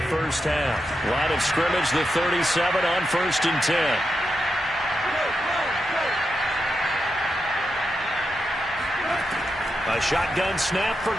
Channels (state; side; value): normal; both; correlation 0.86